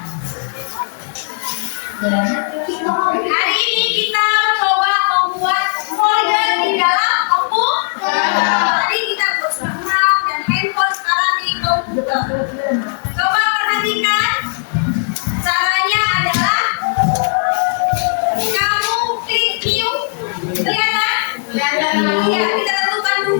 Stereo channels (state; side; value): silent; right; 59 dB below the other